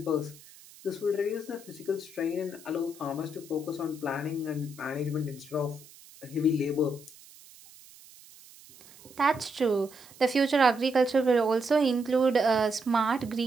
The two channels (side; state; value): right; noise; hiss, 22 dB below the sound